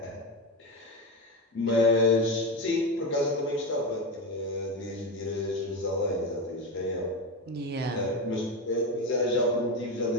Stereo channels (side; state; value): both; normal; correlation 0.17